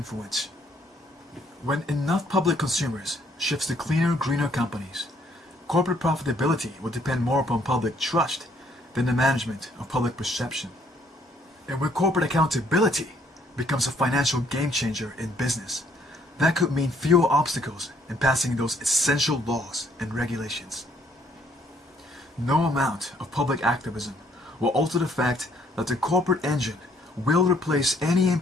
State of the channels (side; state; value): both; normal; correlation 0.66